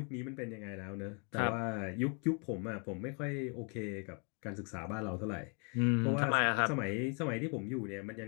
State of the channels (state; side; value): quieter; right; 36.6 dB